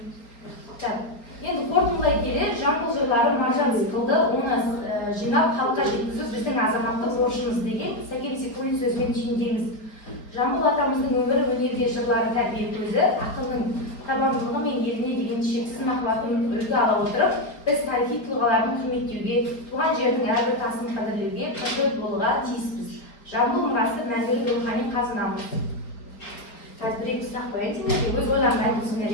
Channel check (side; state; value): right; late; 4.2 ms